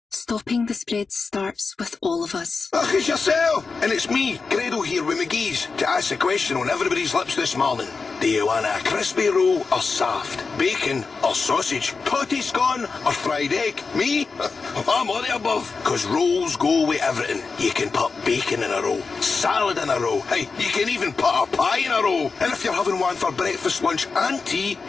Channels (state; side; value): quieter; right; 4.6 dB